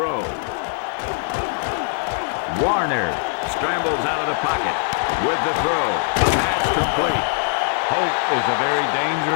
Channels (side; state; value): right; silent; 65 dB below the other